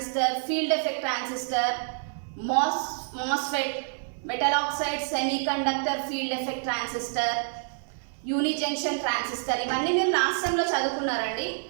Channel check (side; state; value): left; silent; 60 dB below the other